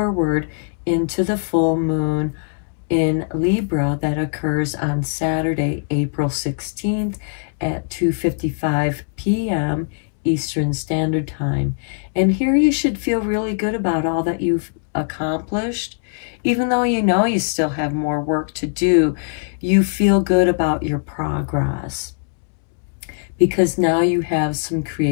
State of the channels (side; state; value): right; silent; digital silence